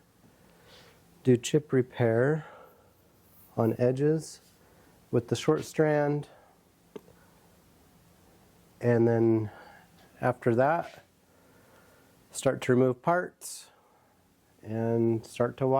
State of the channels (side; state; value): both; identical; correlation 1.00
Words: do chip repair on edges with the short strand, and then after that start to remove parts and start to